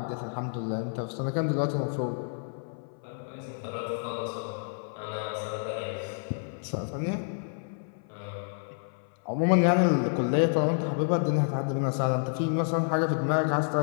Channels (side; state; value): right; silent; 58 dB below the other